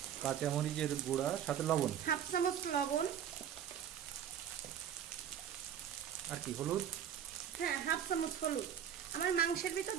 কাঁচামরিচের গুঁড়া, সাথে লবণ, হাফ চামচ লবণ, আর কি হলুদ, হ্যাঁ হাফ চামচ হলুদ। আমার মাংসের ভিতর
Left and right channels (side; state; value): left; quieter; 9.2 dB